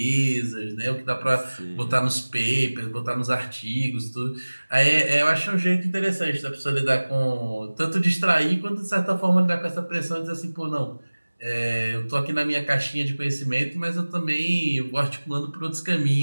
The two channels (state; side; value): inverted; both; correlation -1.00